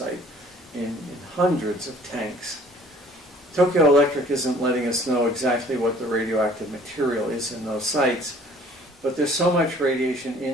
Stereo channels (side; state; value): both; normal; correlation 0.54